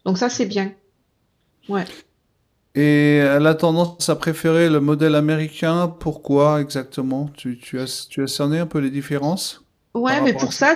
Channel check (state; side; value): identical; both; correlation 1.00